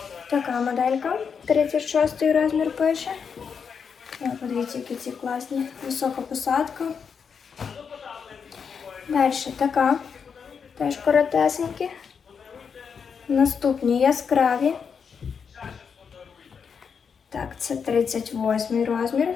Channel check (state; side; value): quieter; right; 6.4 dB